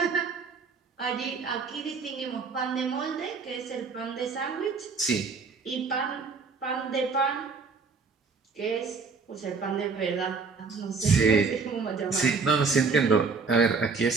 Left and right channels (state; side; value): quieter; left; 4.8 dB